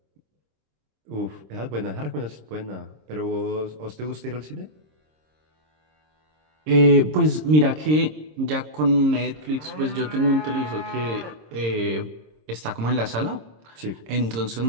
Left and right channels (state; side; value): late; left; 26 ms